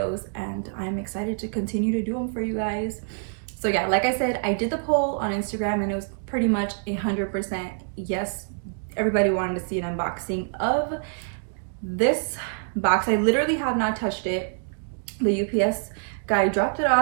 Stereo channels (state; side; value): silent; left; digital silence